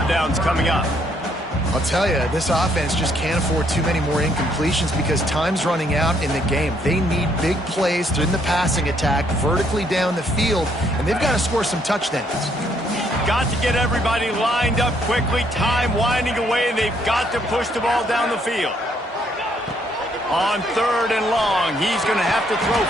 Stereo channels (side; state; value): both; normal; correlation 0.69